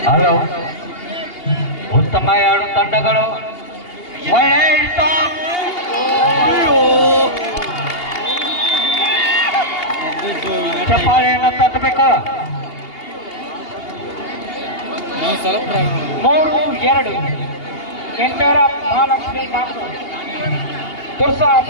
ಹಲೋ, ಉತ್ತಮ ಎರಡು ತಂಡಗಳು ಚಪ್ಪಾಳೆಯನ್ನು ತಟ್ಟಬೇಕು. 3-2 ಇನ್ ಫೇವರ್ ಆಫ್ ಮಹಾಲಕ್ಷ್ಮಿ ನಾಗ್ನೂರ್.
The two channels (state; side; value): late; right; 2.8 ms